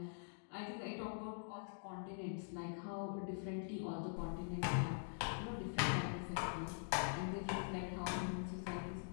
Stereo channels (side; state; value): right; silent; digital silence